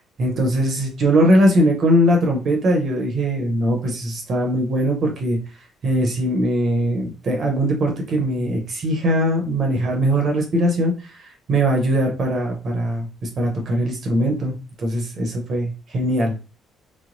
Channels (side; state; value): both; normal; correlation 0.61